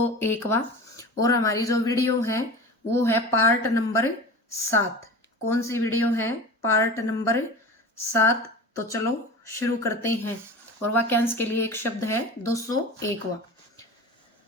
और हमारी जो वीडियो है वो है पार्ट नंबर 7। कौन सी वीडियो है? Part number 7। तो चलो शुरू करते हैं। और वाक्यांश के लिए एक शब्द है 201वां।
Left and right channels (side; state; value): both; normal; correlation 0.33